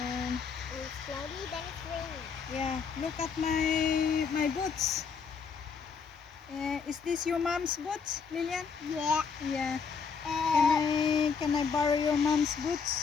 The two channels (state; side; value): quieter; right; 5.8 dB